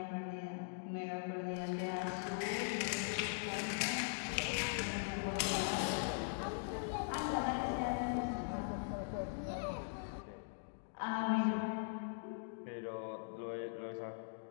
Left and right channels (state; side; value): silent; right; digital silence